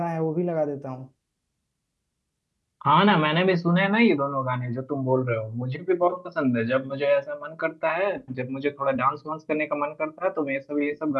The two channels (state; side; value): identical; both; correlation 1.00